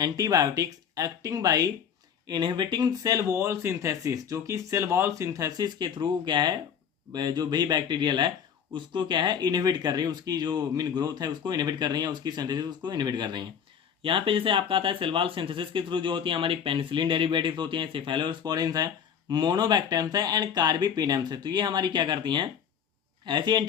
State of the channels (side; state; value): right; quieter; 7.9 dB